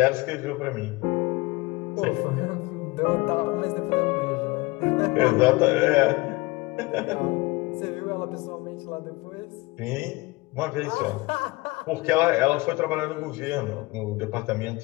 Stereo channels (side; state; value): right; quieter; 22.8 dB